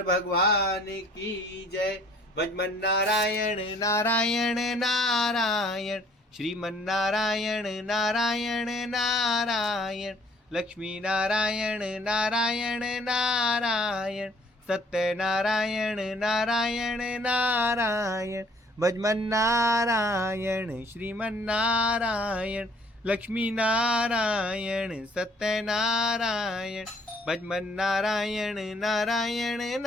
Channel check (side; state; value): both; normal; correlation 0.58